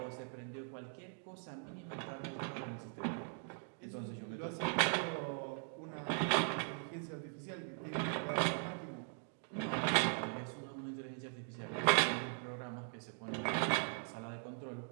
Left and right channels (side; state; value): left; silent; 51 dB below the other